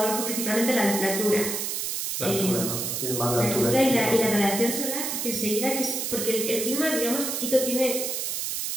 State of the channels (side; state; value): right; noise; hiss, 2 dB below the sound